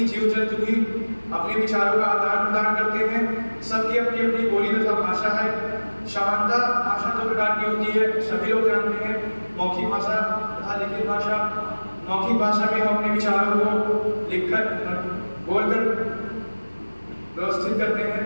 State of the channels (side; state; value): both; inverted; correlation -1.00